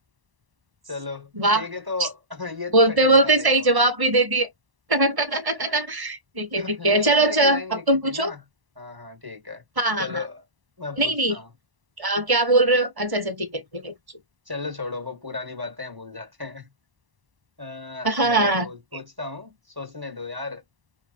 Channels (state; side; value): late; left; 1.0 ms